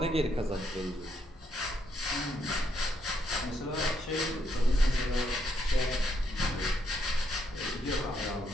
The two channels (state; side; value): normal; both; correlation 0.76